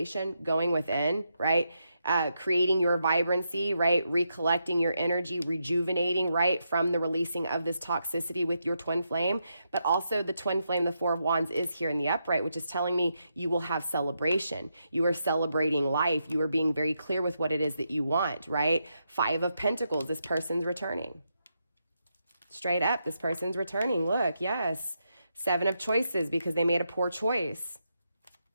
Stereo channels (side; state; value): both; inverted; correlation -0.83